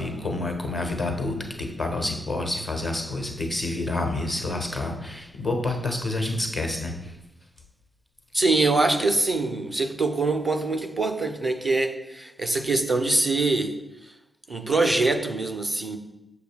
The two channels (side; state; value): both; normal; correlation 0.83